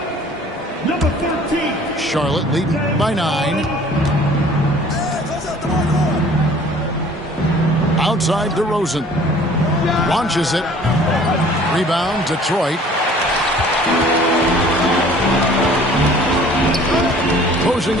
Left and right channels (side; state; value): both; normal; correlation 0.51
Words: number 13. Charlotte leading by 9. Outside DeRozan. Launches it. Rebound, Detroit. Closing